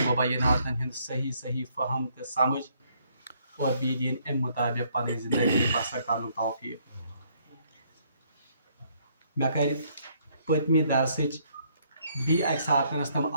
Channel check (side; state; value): both; inverted; correlation -0.68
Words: مبیناتن ہند صحیح صحیح فہم تو سمجھ اور بی دین ام مطابق پنہ زندگی بسر کرن توفیق مے کر پتمی درسچ بی اکہ ساتنس تم